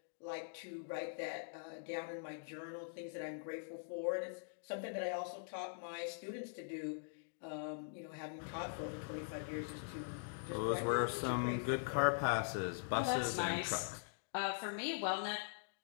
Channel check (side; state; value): right; silent; digital silence